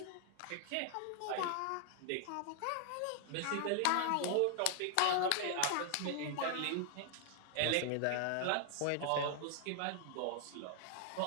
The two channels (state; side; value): different; both; correlation 0.00